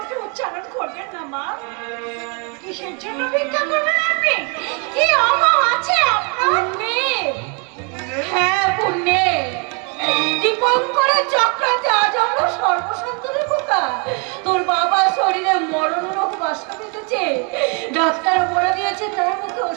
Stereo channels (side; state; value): left; quieter; 35.6 dB